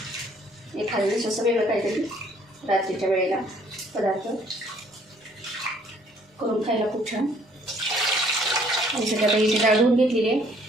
एखाद्या वेळेस असं वेगळं काहीतरी रात्रीच्या वेळेला पदार्थ करून खायला खूप छान. आणि सध्या आता इथे डाळ धुवून घेतलेली आहे,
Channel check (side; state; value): both; normal; correlation 0.61